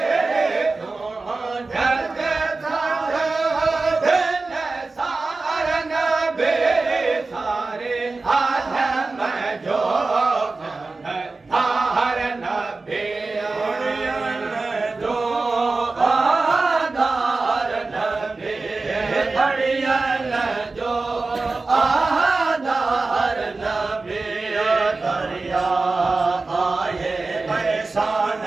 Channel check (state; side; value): quieter; left; 3.6 dB